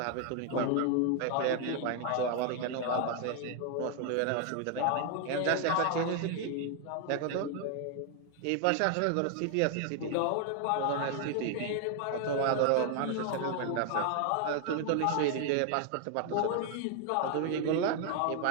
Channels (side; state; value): both; different; correlation 0.00